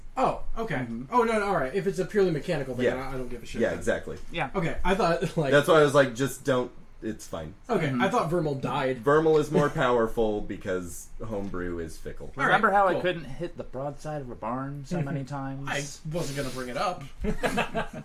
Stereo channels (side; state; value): both; identical; correlation 1.00